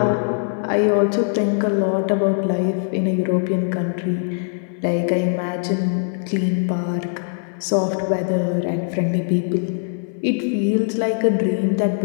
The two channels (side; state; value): right; silent; digital silence